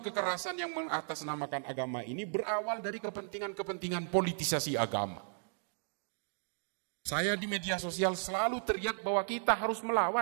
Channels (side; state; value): left; silent; digital silence